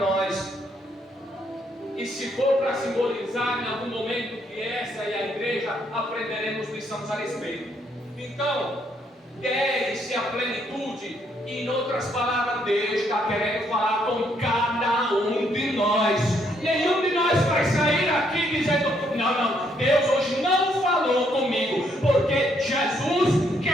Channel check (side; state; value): both; normal; correlation 0.72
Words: E se for para simbolizar em algum momento que essa é a igreja, aprenderemos lições a respeito. Então, 10 é a plenitude. E em outras palavras, Deus está querendo falar com cada um de nós. Nenhum de nós vai sair aqui dizendo, não, Deus hoje não falou comigo, porque Jesus